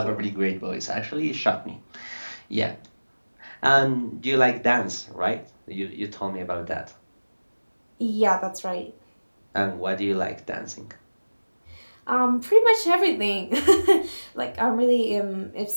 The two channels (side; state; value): both; inverted; correlation -1.00